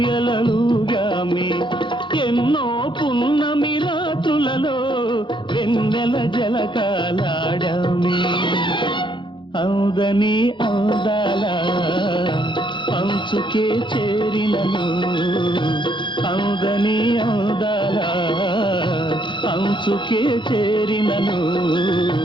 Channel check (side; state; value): right; late; 0.23 ms